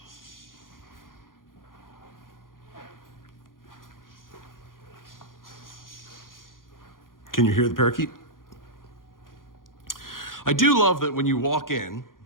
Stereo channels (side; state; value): right; late; 0.90 ms